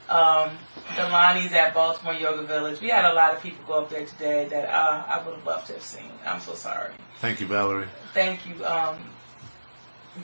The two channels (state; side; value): inverted; both; correlation -1.00